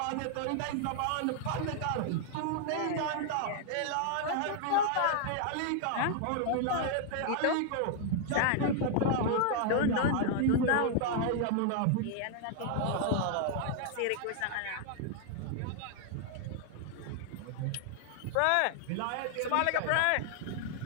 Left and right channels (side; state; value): both; different; correlation 0.00